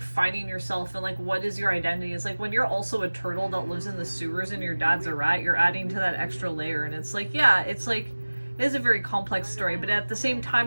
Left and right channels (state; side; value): inverted; both; correlation -1.00